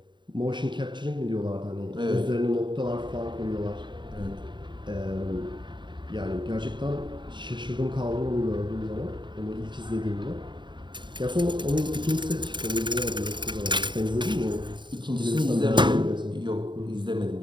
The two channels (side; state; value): left; late; 0.23 ms